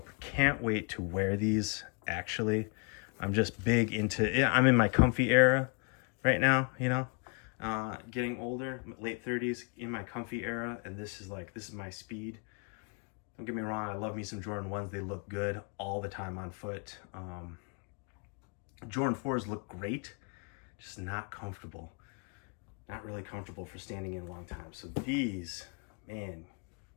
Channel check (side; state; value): right; quieter; 34.2 dB